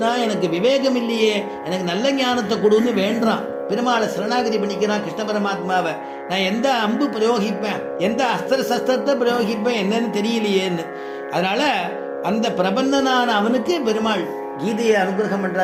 எனக்கு விவேகம் இல்லையே, எனக்கு நல்ல ஞானத்தை கொடுன்னு வேண்டான். பெருமாளை சரணாகதி பண்ணிக்கிறான் கிருஷ்ண பரமாத்மாவை. நான் எந்த அம்பு பிரயோகிப்பேன், எந்த அஸ்திர சஸ்திரத்தை பிரயோகிப்பேன் என்னன்னு தெரியலையேன்னு. அதனால அந்த பிரபந்தனான அவனுக்கு பெருமாள் கீதையை அனுகிரகம்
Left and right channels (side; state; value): both; identical; correlation 1.00